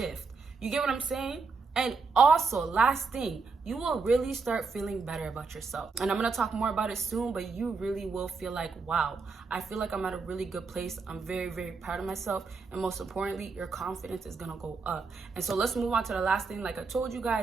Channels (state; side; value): quieter; left; 4.6 dB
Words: You get what I'm saying? And also, last thing, you will really start feeling better about yourself. And I'm gonna talk more about it soon, but you really will feel like, wow, I feel like I'm at a really good place. I'm very, very proud of myself. And most importantly, your confidence is gonna go up. And so let's move on to the last thing. Like I told you